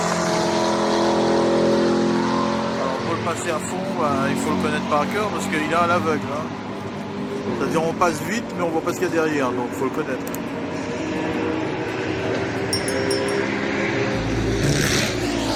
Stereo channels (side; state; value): both; identical; correlation 1.00